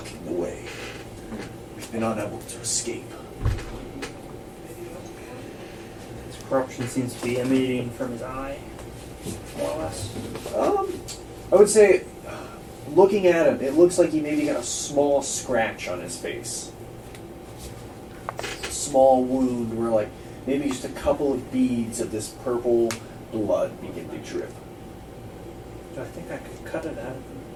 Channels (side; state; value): both; identical; correlation 1.00